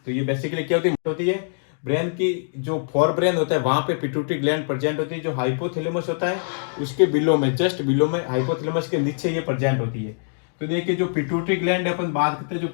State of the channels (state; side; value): silent; right; digital silence